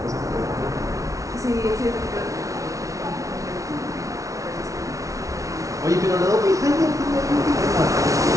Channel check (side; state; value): left; late; 0.16 ms